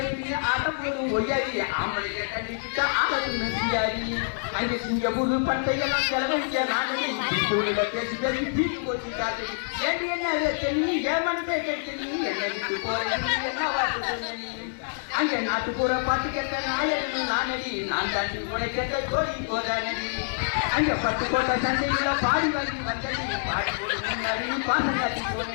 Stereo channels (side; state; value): right; silent; digital silence